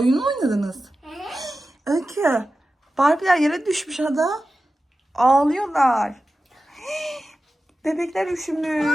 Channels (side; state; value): both; normal; correlation 0.94